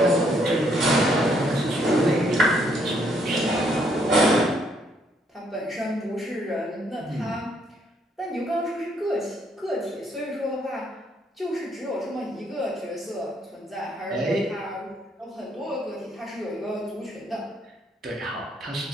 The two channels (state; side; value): normal; both; correlation 0.70